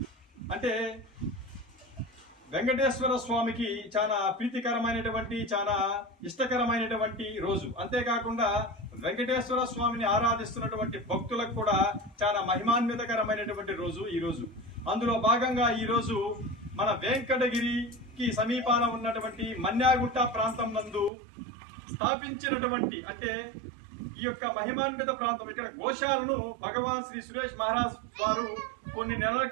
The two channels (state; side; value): drops out; left; at 21.1 s